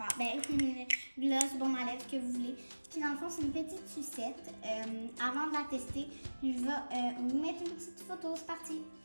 Ben, gloss, baume à lèvres, que vous voulez. Puis dans le fond, c'est une petite sucette. Avant de la tester, je vais vous mettre une petite photo, c'est parti.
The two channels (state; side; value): inverted; both; correlation -1.00